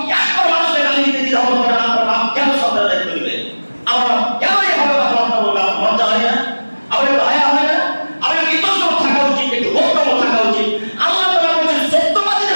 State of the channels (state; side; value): inverted; both; correlation -1.00